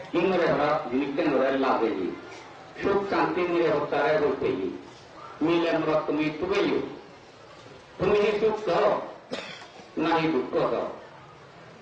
ইংরে জিনিসের লাগে সুখ শান্তি মিলে হত্যারে বলতে মিলে আমরা তুমি তুবেই তুমি কি সুখ দাও নাহি দুঃখ দাও।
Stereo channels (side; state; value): both; identical; correlation 1.00